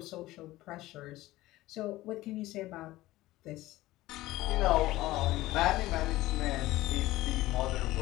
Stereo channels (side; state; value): right; quieter; 17.3 dB